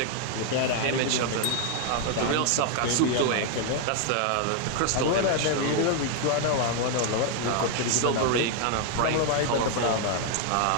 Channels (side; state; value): both; different; correlation 0.00